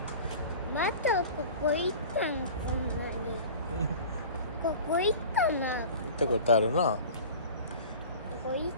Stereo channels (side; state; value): both; inverted; correlation -0.39